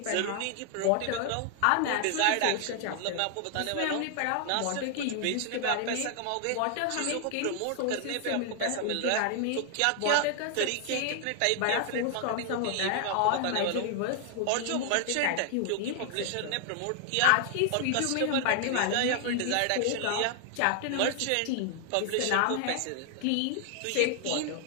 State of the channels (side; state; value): both; different; correlation 0.00